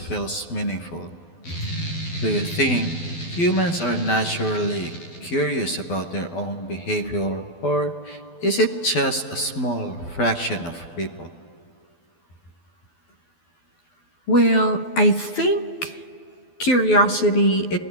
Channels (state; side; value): late; right; 12 ms